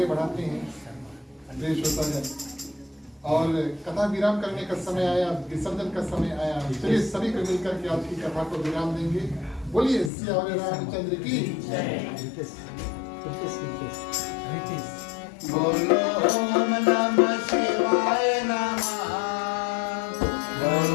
बढ़ाते हैं प्रिय श्रोतागण, और कथा विराम करने का समय आया, विसर्जन का समय आया। चलिए सभी को मिलकर के आज की कथा को विराम देंगे। बोलिए सियावर रामचंद्र की बोलो ओम नमः शिवाय नमः।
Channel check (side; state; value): right; drops out; at 10.1 s